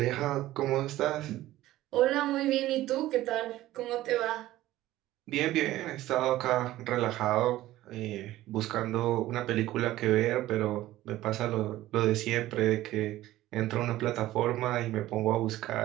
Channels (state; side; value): quieter; left; 15.5 dB